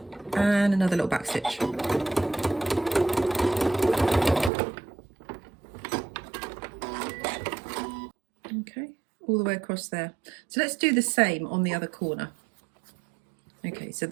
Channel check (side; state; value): left; drops out; at 4.5 s